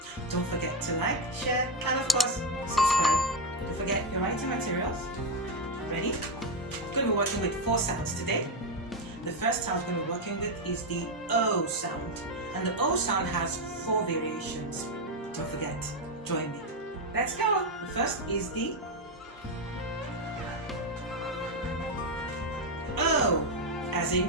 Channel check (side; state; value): both; normal; correlation 0.06